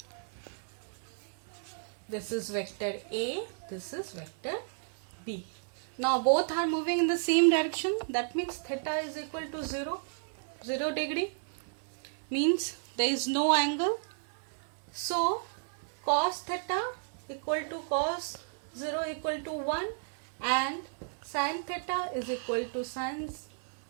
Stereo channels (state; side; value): silent; left; 56 dB below the other